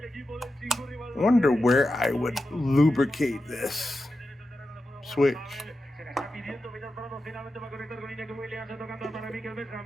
wonder where I would lubricate this switch.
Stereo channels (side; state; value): both; normal; correlation 0.91